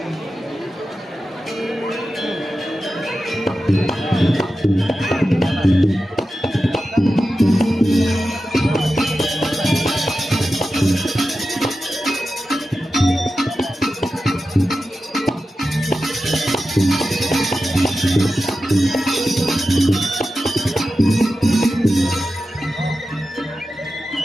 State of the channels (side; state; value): both; normal; correlation 0.92